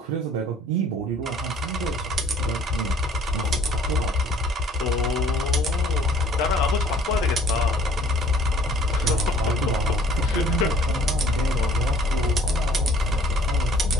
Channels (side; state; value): both; normal; correlation 0.56